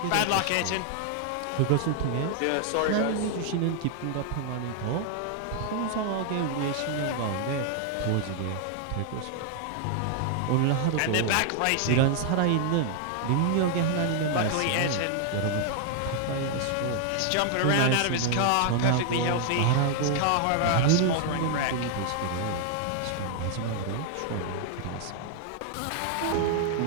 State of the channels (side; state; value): both; different; correlation 0.00